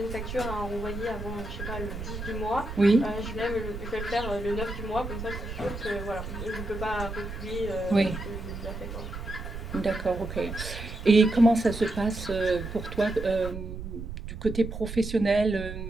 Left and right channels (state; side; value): noise; right; rumble, 8 dB below the sound